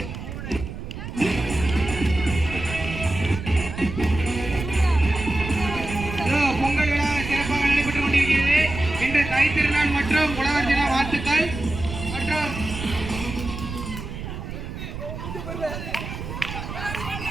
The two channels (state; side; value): noise; right; rumble, 8 dB below the sound